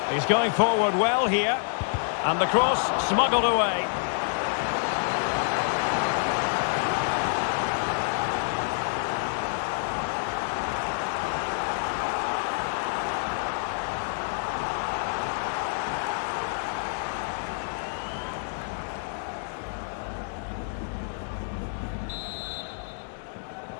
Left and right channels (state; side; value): silent; right; digital silence